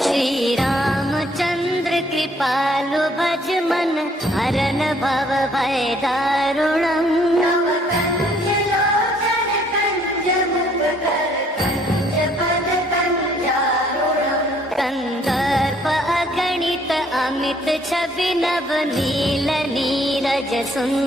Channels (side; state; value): both; normal; correlation 0.63